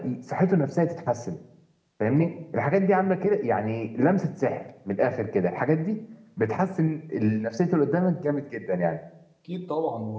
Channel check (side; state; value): both; identical; correlation 1.00